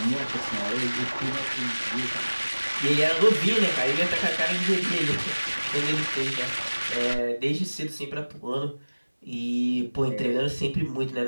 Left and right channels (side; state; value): both; inverted; correlation -1.00